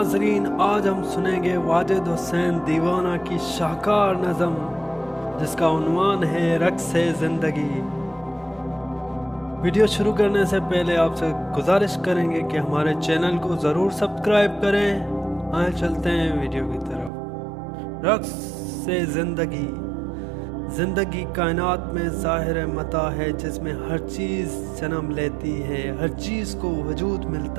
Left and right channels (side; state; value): left; drops out; at 17.1 s